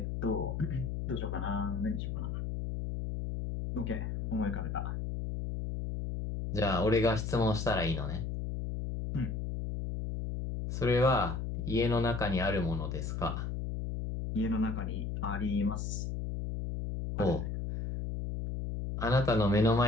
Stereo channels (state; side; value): noise; left; hum, 3 dB below the sound